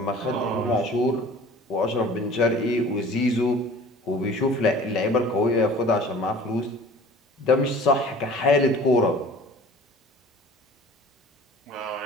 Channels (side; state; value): both; normal; correlation 0.45